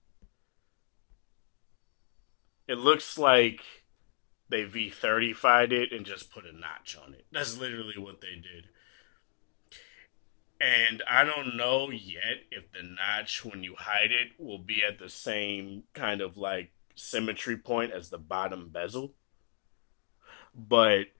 It looks like they V30'd it and just put a notch on it. That's literally what they did. And I don't know yet if the notch, when you hide it, will be at the same kind of like symmetry point as the bottom bezel. But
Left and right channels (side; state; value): right; silent; digital silence